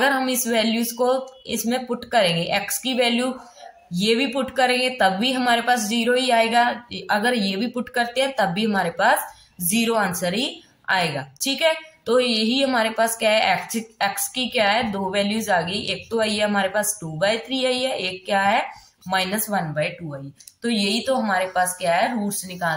हम इस वैल्यूज को इसमें पुट करेंगे, x की वैल्यू ये भी पुट करेंगे तब भी हमारे पास 0 ही आएगा, अगर ये भी पुट करते हैं तब भी हमारे पास 0 आंसर ही आएगा, ठीक है। तो यही हमारे पास क्या है, x की क्या है, 2 वैल्यूज आ गई, एक तो आई है हमारे पास 2/3 आई है, एक क्या है -1/2 आई। तो यही तो हमारे पास क्या है, रूट्स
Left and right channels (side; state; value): both; identical; correlation 1.00